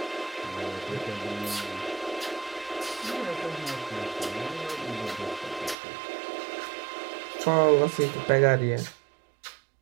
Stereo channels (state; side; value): drops out; left; at 5.8 s